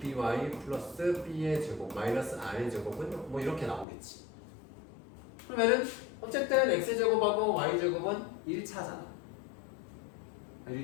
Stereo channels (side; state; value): right; drops out; at 3.9 s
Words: 플러스 b의 제곱 마이너스 r의 제곱은 뭐 이렇게 나오겠지. 그러면은 어쨌든 x제곱하고 y제곱은 1차잖아.